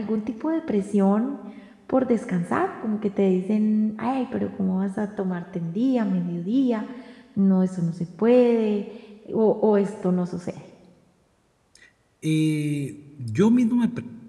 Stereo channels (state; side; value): identical; both; correlation 1.00